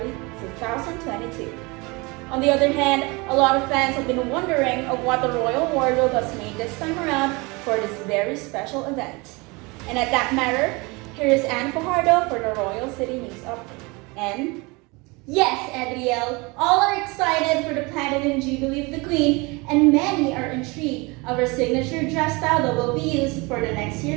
2022. On the other hand, a lot of fans have been wondering of what the royal wardrobe has made this time around for this very special event. And at that matter, here is Anne Fajardo for the Royal City News Update. And yes, Edrielle, all are excited for the Platinum Jubilee of the Queen, and many are intrigued of her signature dress style that will be used for the next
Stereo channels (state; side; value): quieter; left; 26.3 dB